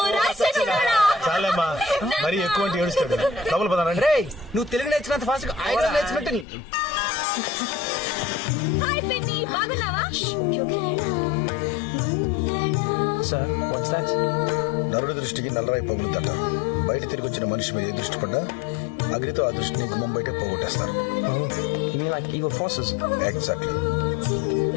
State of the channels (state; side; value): drops out; right; at 6.5 s